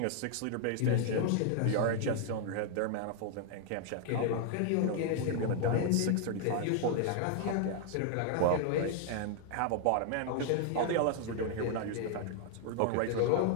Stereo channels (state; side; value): different; both; correlation 0.00